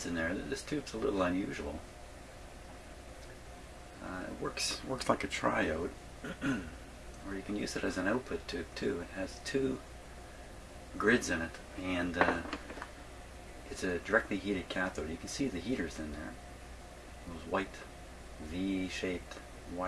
in there. This tube's a little unusual. It works like a triode, or you can use it as an output tube too. It has two grids in it, and it's a directly heated cathode. You can see the heaters in there, those white V-shaped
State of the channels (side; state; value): both; identical; correlation 1.00